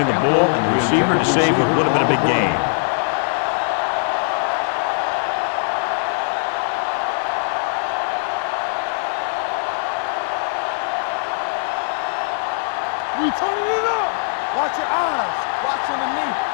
the ball and the receiver to save what would have been a big gain. We turning it up. Watch your eyes. Watch underneath.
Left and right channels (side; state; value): right; silent; digital silence